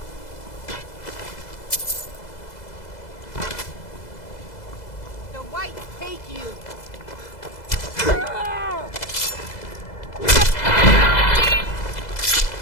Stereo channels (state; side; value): late; right; 2.0 ms